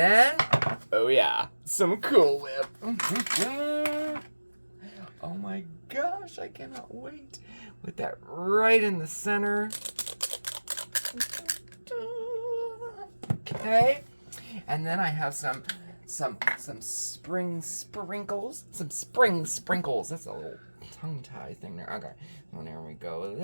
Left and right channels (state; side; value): inverted; both; correlation -1.00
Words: oh yeah, some Cool Whip. Oh my gosh, I cannot wait. With that right in the center. Okay. And then I have some spring sprinkles. Some spring sprinkles. That's a little tongue tie thing there. Okay. Well, there we go